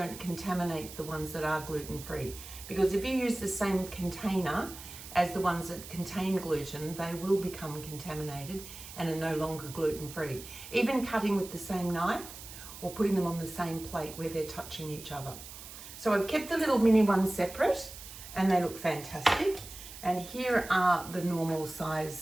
contaminate the ones that are gluten-free, because if you use the same container as the ones that contain gluten, they will become contaminated and are no longer gluten-free. Even cutting with the same knife or putting them on the same plate where they're touching each other. So I've kept the little mini ones separate and they look fantastic. And here are the normal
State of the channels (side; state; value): right; noise; hiss, 14 dB below the sound